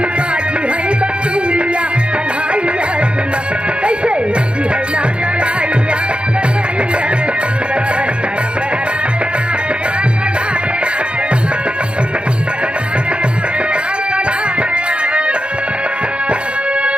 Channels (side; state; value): left; late; 0.056 ms